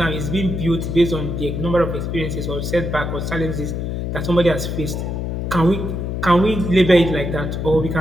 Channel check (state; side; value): noise; left; hum, 3 dB below the sound